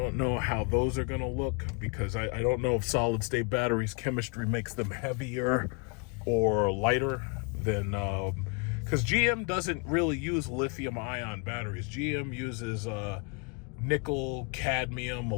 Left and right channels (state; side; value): quieter; right; 34.3 dB